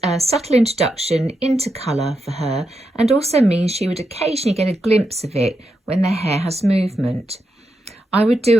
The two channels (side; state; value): both; normal; correlation 0.85